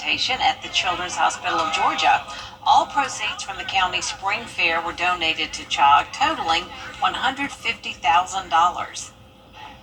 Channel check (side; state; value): both; identical; correlation 1.00